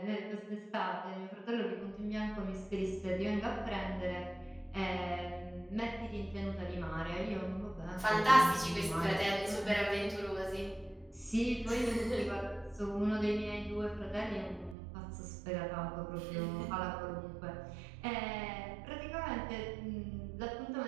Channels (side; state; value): left; drops out; at 14.8 s